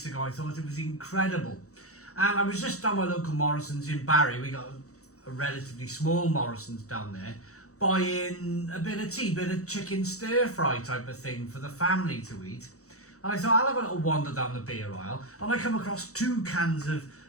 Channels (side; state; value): right; late; 0.65 ms